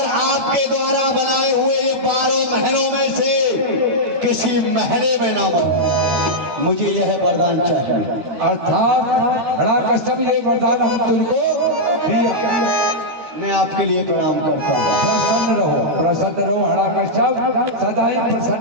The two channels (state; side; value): late; left; 12 ms